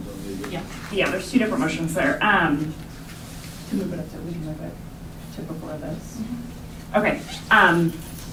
on the. Yeah. Yeah, there's two different motions there. To move it up, we can move it to before this. Okay.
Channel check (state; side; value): identical; both; correlation 1.00